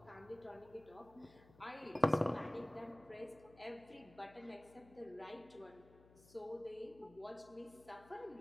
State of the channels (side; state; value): left; noise; hum, 23 dB below the sound